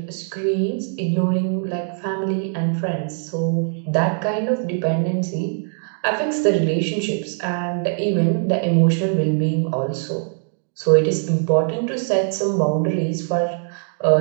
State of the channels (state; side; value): silent; left; 58 dB below the other